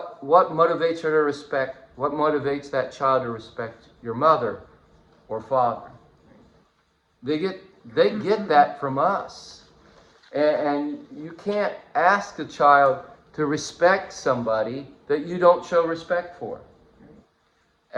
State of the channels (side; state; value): both; identical; correlation 1.00